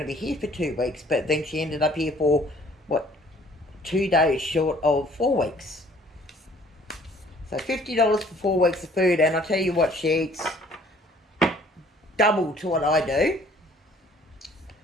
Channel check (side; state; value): both; normal; correlation 0.57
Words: to be here for 2 weeks, but then she ended up here for, 2 days short of 4 weeks. So $50 for 4 weeks of food, and I tell you what, she eats double to what I do.